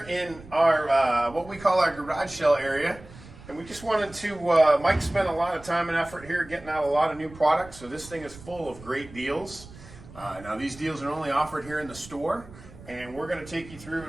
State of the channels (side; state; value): right; noise; rumble, 19 dB below the sound